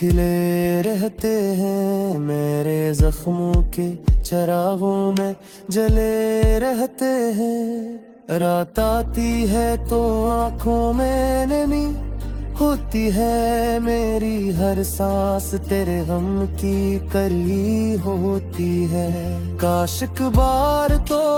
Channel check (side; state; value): both; identical; correlation 1.00